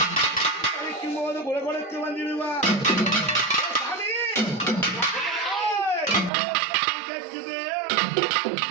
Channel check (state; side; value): drops out; left; at 6.3 s